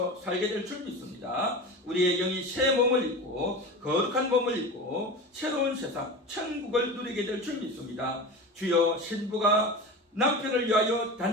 살게 될 줄 믿습니다. 우리의 영이 새 몸을 입고 거룩한 몸을 입고 새로운 세상 천국을 누리게 될 줄 믿습니다. 주여 신부가 남편을 위하여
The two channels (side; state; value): both; normal; correlation 0.29